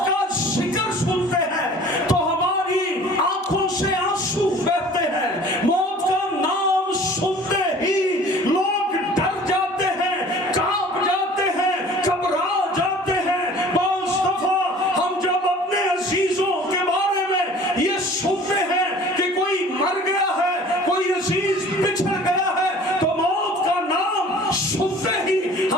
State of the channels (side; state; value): both; normal; correlation 0.47